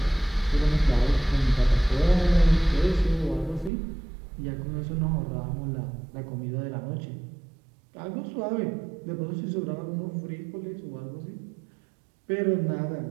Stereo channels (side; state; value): left; drops out; at 3.7 s